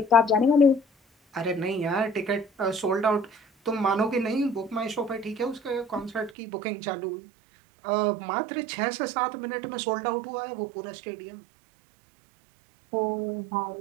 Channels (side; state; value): left; drops out; at 6.3 s